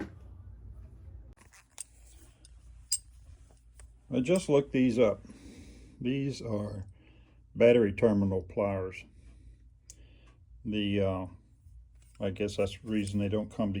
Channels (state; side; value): identical; both; correlation 1.00